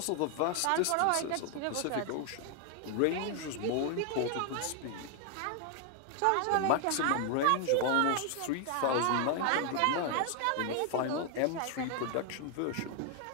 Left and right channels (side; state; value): both; different; correlation 0.00